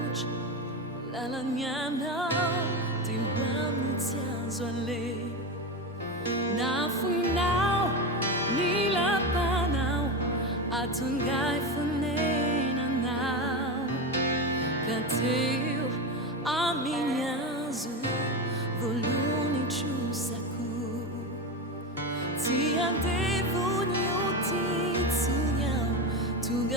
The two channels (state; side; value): normal; both; correlation 0.18